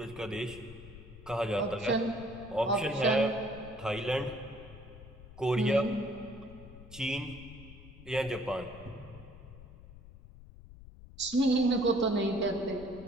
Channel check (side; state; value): left; noise; rumble, 17 dB below the sound